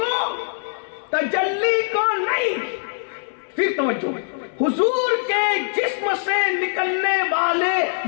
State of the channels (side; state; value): right; silent; digital silence